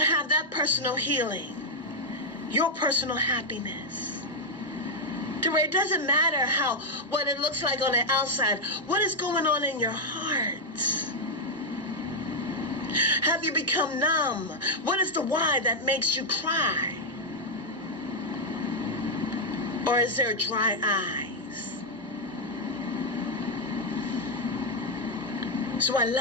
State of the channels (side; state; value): both; normal; correlation -0.01